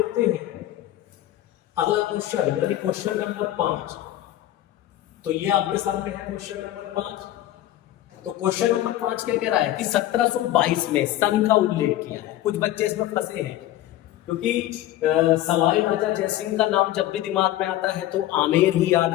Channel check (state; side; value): quieter; right; 14.0 dB